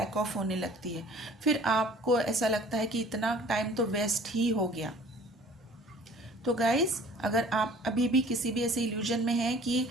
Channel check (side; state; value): both; normal; correlation 0.50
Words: ऑफ होने लगती है। फिर आपको ऐसा लगता है कि इतना टाइम तो वेस्ट ही हो गया। तो गाइस, अगर आप अभी भी किसी भी ऐसे इल्यूजन में हैं कि